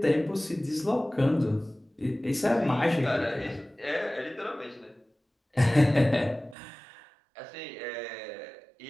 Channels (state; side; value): drops out; left; at 6.6 s